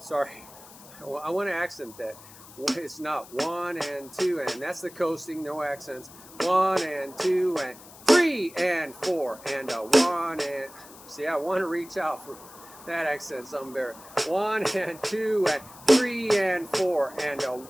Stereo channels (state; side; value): noise; left; hiss, 20 dB below the sound